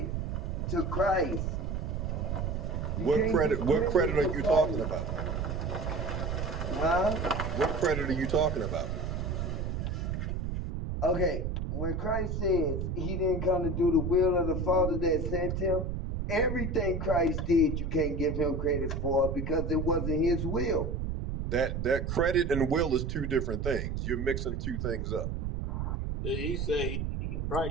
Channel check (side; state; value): right; noise; rumble, 2 dB below the sound